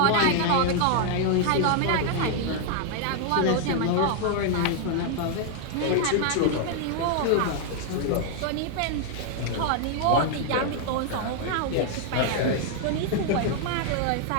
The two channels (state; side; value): different; both; correlation 0.00